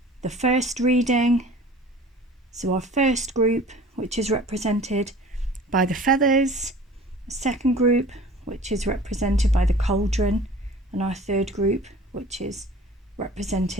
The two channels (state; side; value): normal; both; correlation 0.45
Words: first reading, so our first group, which is represented by the feathers, a second group, which is represented by the cauldron, and our third group, which is